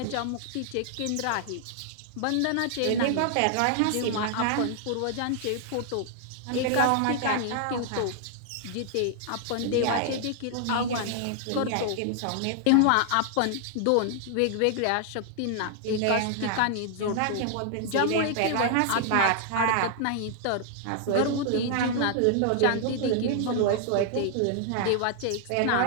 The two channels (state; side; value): different; both; correlation 0.00